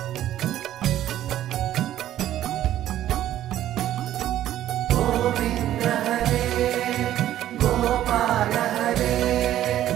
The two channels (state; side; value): quieter; left; 12.6 dB